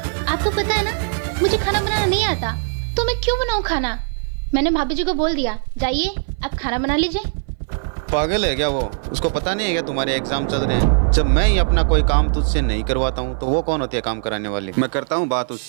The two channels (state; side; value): silent; left; 58 dB below the other